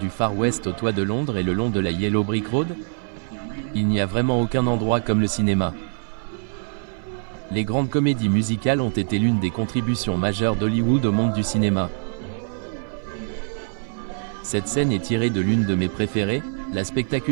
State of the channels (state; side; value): silent; left; 57 dB below the other